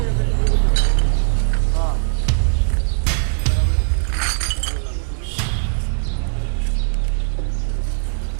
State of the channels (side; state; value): left; silent; digital silence